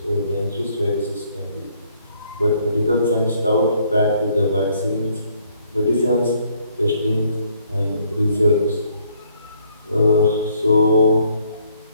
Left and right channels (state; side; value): inverted; both; correlation -0.66